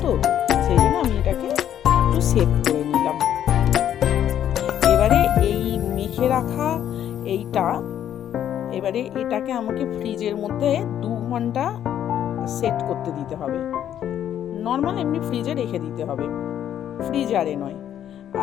তো সেই জন্য আমি এটাকে একটু সেট করে নিলাম। এবারে এই মেখে রাখা এইটা, এবারে এটাকে আমাকে ফ্রিজের মধ্যে 2 ঘন্টা সেট করতে দিতে হবে। নর্মাল এমনি ফ্রিজে রেখে দিতে হবে, ফ্রিজারে নয়।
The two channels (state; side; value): quieter; right; 10.4 dB